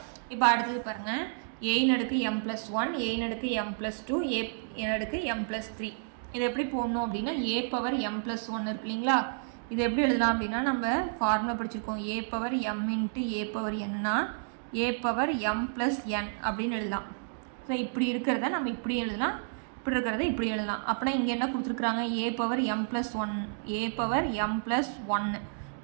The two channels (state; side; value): silent; left; digital silence